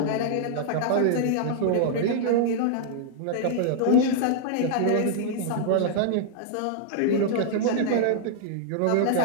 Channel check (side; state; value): both; different; correlation -0.01